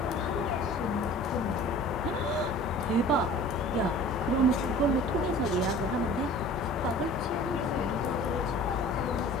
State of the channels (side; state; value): both; normal; correlation 0.45